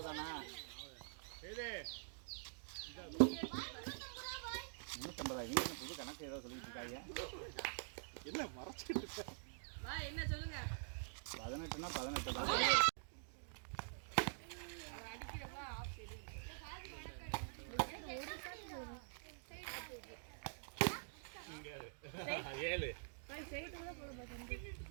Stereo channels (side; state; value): left; silent; digital silence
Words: தானா இது 350 நீங்க புது கணக்கு ஏதோ சொல்லிட்டு இருக்காங்க என்ன மறைச்சிட்டு இருக்க என்ன சொல்லுங்க 18னா 18 தான்